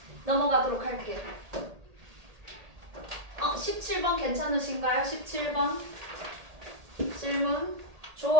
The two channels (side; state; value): left; late; 1.8 ms